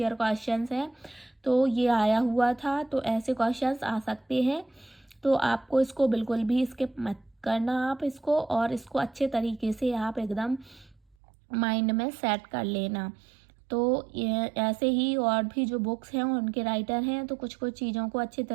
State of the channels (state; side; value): drops out; left; at 11.2 s